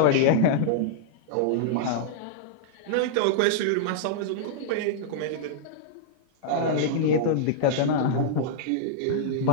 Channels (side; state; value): both; different; correlation -0.02